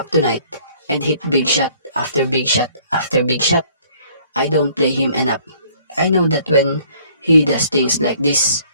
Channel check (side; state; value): both; inverted; correlation -0.58